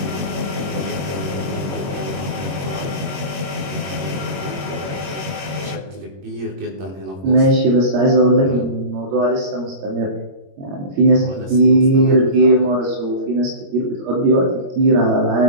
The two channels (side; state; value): left; late; 21 ms